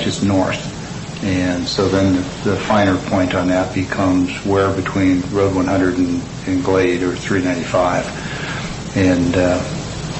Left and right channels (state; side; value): identical; both; correlation 1.00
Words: it's north. And so then the finer point on that becomes where between Road 100 and Glade or 395. And